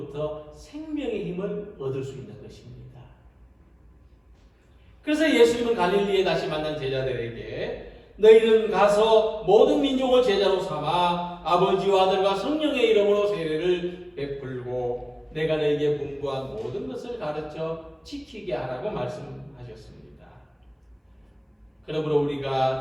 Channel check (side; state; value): both; identical; correlation 1.00